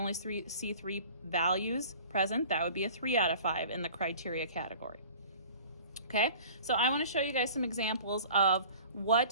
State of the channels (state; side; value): inverted; both; correlation -0.44